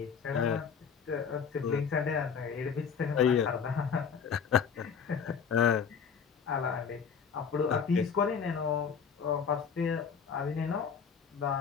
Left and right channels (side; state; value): right; quieter; 6.6 dB